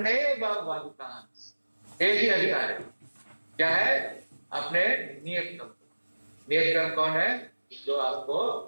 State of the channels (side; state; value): both; inverted; correlation -1.00